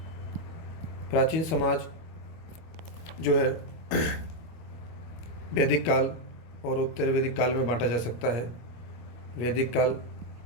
प्राचीन समाज जो है वैदिक काल और उत्तर वैदिक काल में बांटा जा सकता है। वैदिक काल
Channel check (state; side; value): late; right; 25 ms